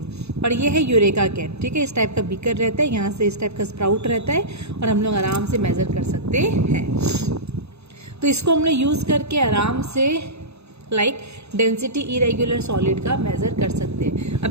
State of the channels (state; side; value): late; left; 0.80 ms